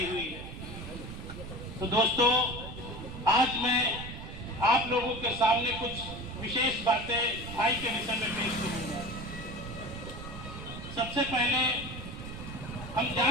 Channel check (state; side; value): noise; right; rumble, 10 dB below the sound